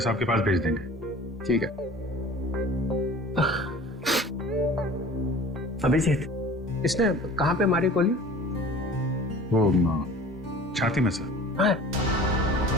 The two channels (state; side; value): normal; both; correlation 0.44